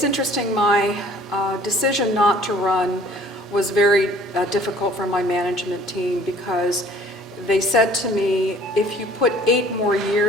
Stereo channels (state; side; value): normal; both; correlation 0.53